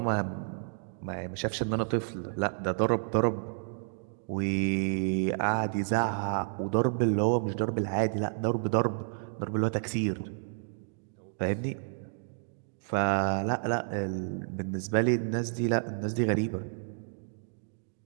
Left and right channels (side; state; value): left; silent; digital silence